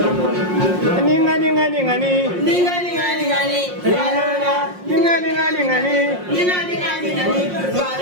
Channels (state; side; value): late; left; 5.6 ms